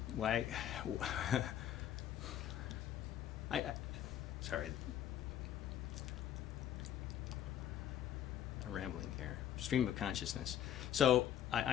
sorry, I'm rambling here. Stream of consciousness. So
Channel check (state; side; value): quieter; right; 10.6 dB